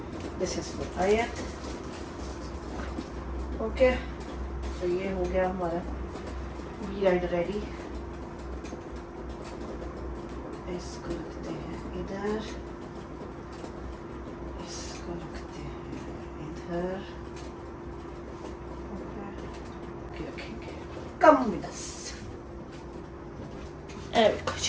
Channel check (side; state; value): both; identical; correlation 1.00